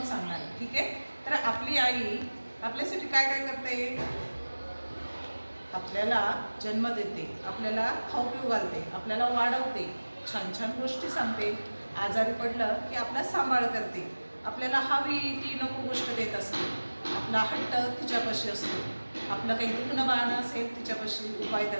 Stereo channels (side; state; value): both; inverted; correlation -1.00